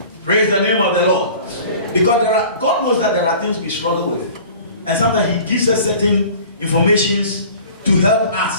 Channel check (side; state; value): both; inverted; correlation -0.45